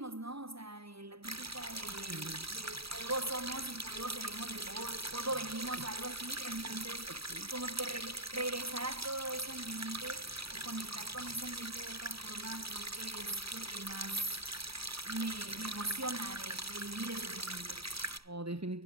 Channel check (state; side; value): late; left; 0.76 ms